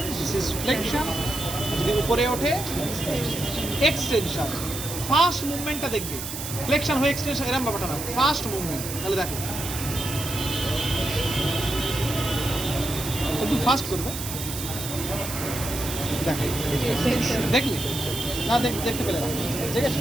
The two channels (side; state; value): right; noise; hiss, 7 dB below the sound